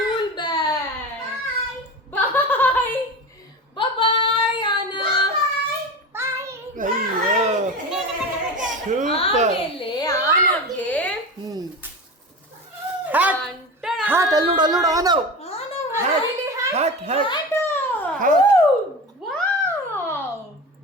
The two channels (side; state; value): both; normal; correlation 0.28